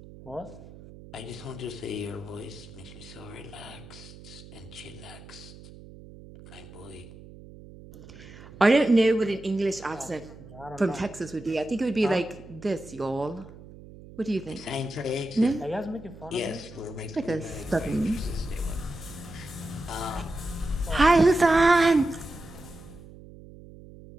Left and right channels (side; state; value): right; noise; hum, 18 dB below the sound